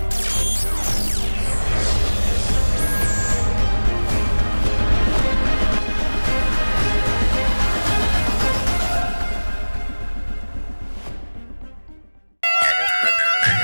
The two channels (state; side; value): inverted; both; correlation -1.00